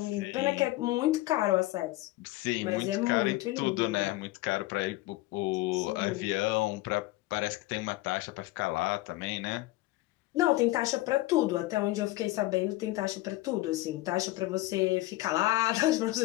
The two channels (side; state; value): right; quieter; 18.2 dB